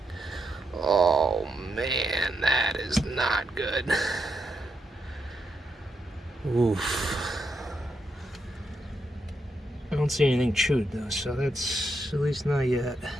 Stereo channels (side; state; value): both; normal; correlation 0.81